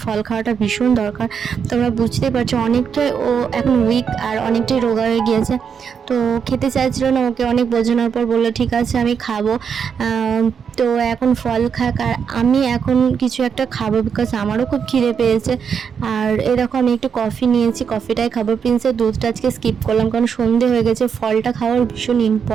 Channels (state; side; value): quieter; left; 6.9 dB